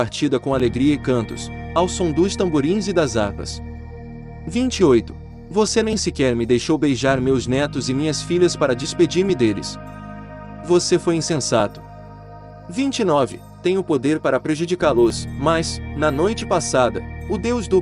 com alegria e cantos, ao som dos tamborins e das harpas. 28. Você nem sequer me deixou beijar meus netos e minhas filhas para despedir-me deles. Você foi insensato. 29. Tenho poder para prejudicá-los, mas, na noite passada, o Deus do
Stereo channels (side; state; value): both; identical; correlation 1.00